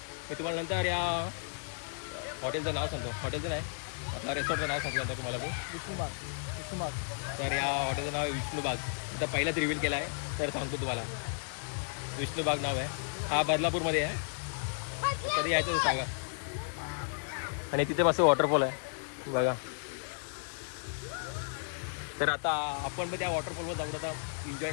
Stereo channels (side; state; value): right; silent; digital silence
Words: तुम्हाला नंतर या हॉटेलचं नाव सांगतो, हॉटेलचं नाही आपल्या रेसॉर्टचं नाव सांगतो नंतर तुम्हाला मी. तर या हॉटेलचं नाव आहे विष्णुबाग. आता पहिलाच रिव्हील केला आहे, तर सांगतो तुम्हाला. विष्णुबाग नाव आहे. हा बदलापूरमध्ये आहे. कधी यायचं तर सांगा. आणि तिथे मस्त वॉटरफॉल आहे बघा. तर आता आपण पण त्या वॉटरफॉलवर जाऊन आता एन्जॉय